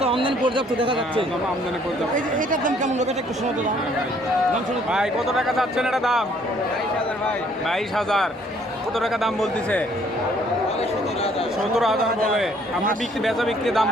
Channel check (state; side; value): normal; both; correlation 0.62